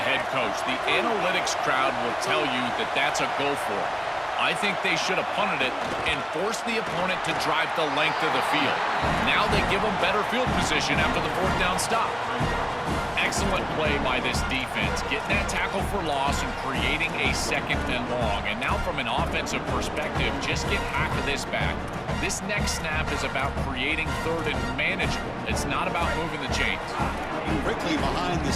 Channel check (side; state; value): both; identical; correlation 1.00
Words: head coach. The analytics crowd will tell you that that's a go for it. I think they should have punted it and forced the opponent to drive the length of the field. Now they give them better field position after the fourth down stop. Excellent play by this defense, getting that tackle for loss and creating a second and long. And now from an offensive perspective, just get half of this back. This next snap is about creating third and manageable. It's not about moving the chains. Quickly behind the